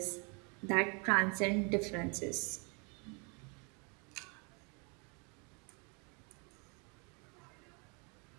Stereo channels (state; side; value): quieter; left; 34.3 dB